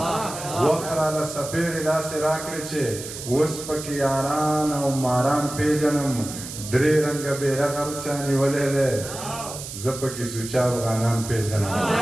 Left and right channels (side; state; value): right; noise; hiss, 10 dB below the sound